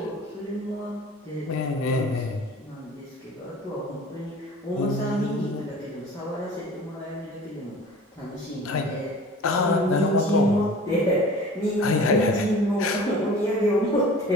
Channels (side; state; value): both; normal; correlation 0.42